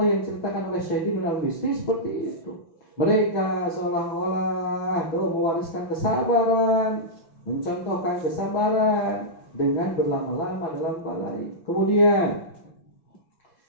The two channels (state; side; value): late; right; 6.2 ms